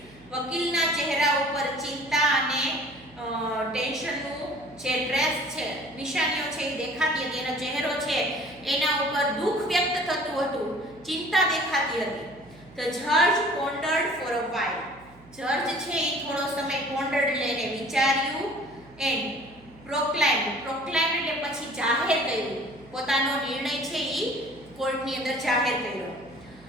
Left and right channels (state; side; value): noise; right; hum, 24 dB below the sound